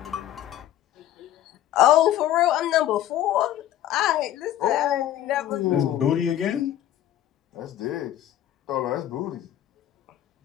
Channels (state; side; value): quieter; right; 12.2 dB